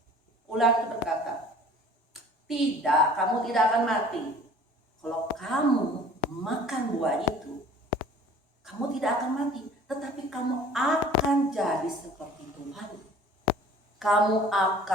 Ular itu berkata, tidak, kamu tidak akan mati. Kalau kamu makan buah itu, kamu tidak akan mati. Tetapi kamu akan jadi seperti Tuhan. Kamu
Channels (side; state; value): both; normal; correlation 0.48